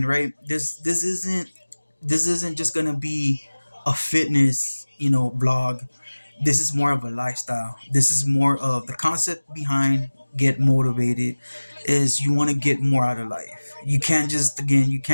right, this isn't just gonna be a fitness, vlog. This is more of a lifestyle. This is more of the concept behind get motivated is you want to get more out of life. You can't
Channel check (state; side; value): inverted; both; correlation -1.00